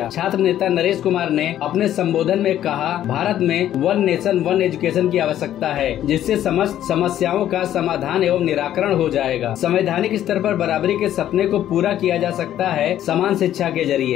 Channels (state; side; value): quieter; right; 11.7 dB